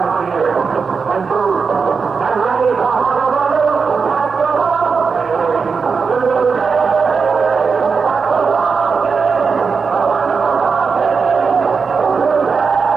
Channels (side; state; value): left; quieter; 5.3 dB